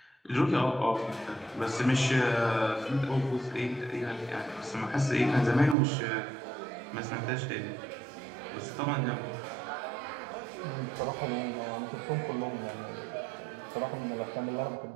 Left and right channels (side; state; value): left; drops out; at 5.8 s